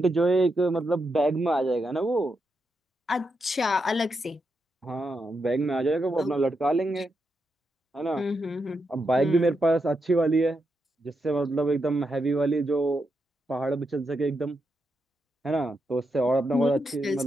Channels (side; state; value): both; normal; correlation 0.84